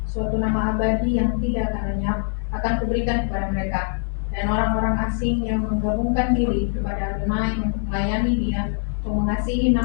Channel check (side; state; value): right; silent; 64 dB below the other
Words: Suatu nama abadi yang tidak akan lenyap akan kuberikan kepada mereka. Dan orang-orang asing yang menggabungkan diri kepada Adonai untuk melayani Dia, untuk mengasihi